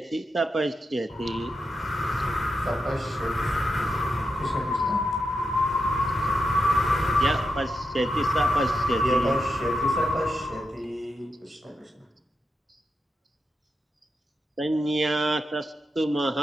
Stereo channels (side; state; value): both; normal; correlation 0.86